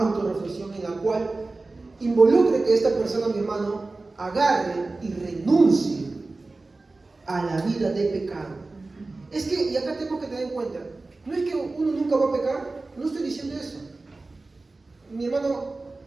en la cual involucre que esta persona, mi hermano, agarre y renuncie a la vida de pecado. Es que, y acá tengo que tener en cuenta, no es que uno nunca va a pecar, no estoy diciendo eso. Mi hermano,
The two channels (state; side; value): quieter; left; 3.4 dB